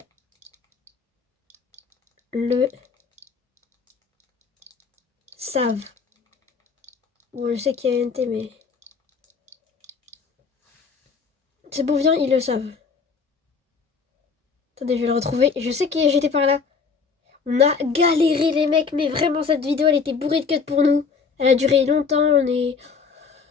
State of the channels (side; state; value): right; quieter; 5.3 dB